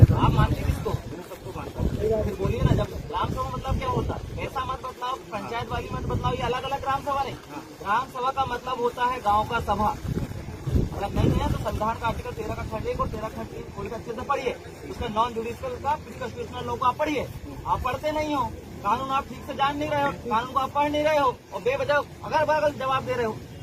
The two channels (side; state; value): both; identical; correlation 1.00